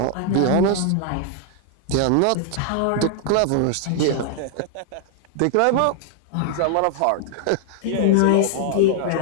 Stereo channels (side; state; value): both; different; correlation 0.00